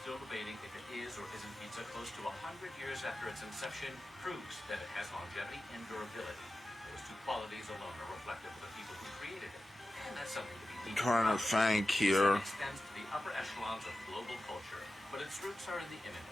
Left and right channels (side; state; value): both; normal; correlation 0.93